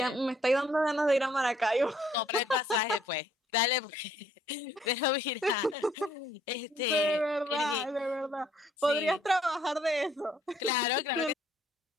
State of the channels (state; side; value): normal; both; correlation 0.64